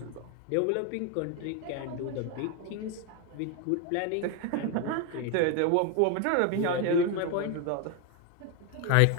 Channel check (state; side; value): different; both; correlation 0.01